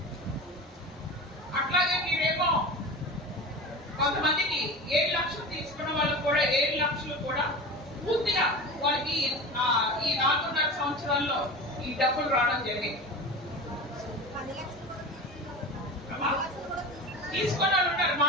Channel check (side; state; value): both; normal; correlation 0.31